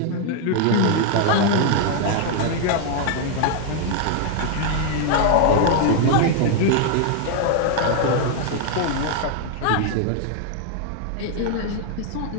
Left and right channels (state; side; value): different; both; correlation 0.00